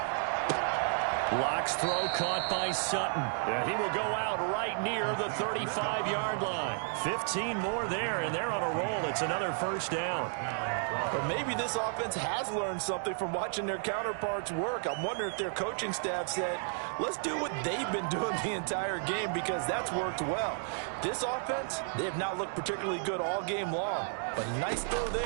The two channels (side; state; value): left; silent; 56 dB below the other